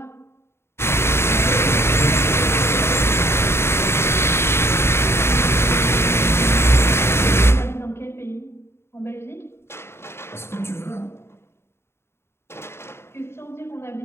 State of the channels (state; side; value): late; right; 0.12 ms